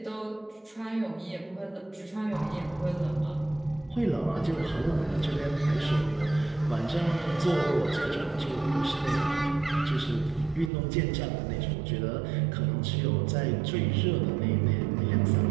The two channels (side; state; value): left; drops out; at 10.7 s